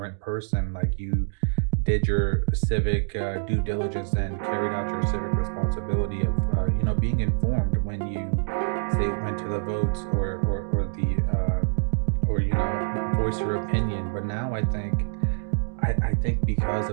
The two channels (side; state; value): left; silent; 60 dB below the other